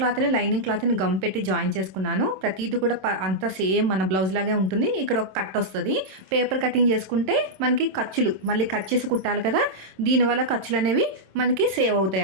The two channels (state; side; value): late; left; 27 ms